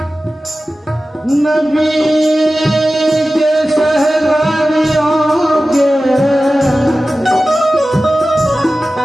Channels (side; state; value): both; normal; correlation 0.95